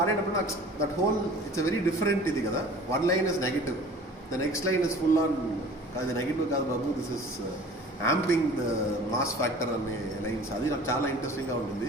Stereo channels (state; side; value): normal; both; correlation 0.45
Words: నాకు that whole it's a very different ఇది కదా. One line is negative, the next line is full on అది నెగిటివ్ కాదు బాబు, this is amping the mass factor అనే లైన్స్. అది నాకు చాలా ఇంట్రెస్టింగ్గా